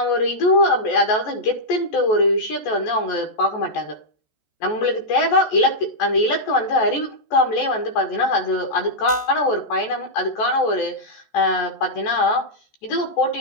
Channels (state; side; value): late; right; 14 ms